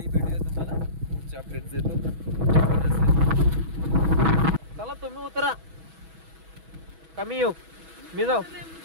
भेटूया तुम्हाला. पुढचे अपडेट्स देतो. चला तुम्ही उतरा कमी येऊ मी जाऊ.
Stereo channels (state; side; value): late; left; 6.2 ms